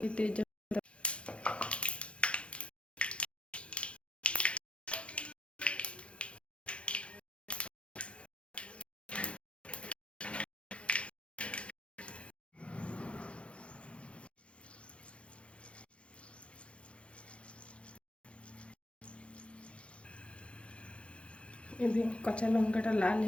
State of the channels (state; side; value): late; right; 0.060 ms